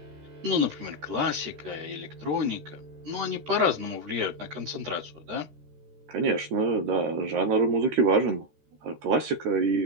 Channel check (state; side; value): late; left; 13 ms